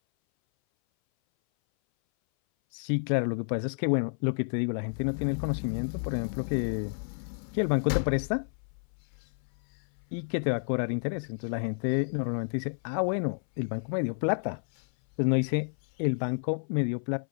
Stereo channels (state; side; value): silent; right; 58 dB below the other